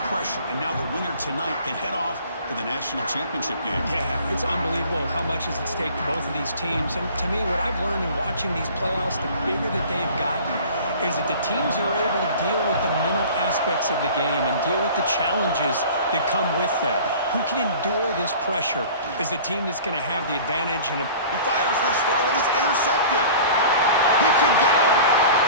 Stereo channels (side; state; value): both; inverted; correlation -0.44